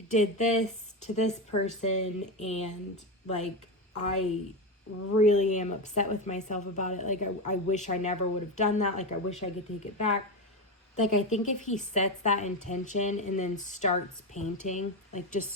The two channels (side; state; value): both; normal; correlation 0.15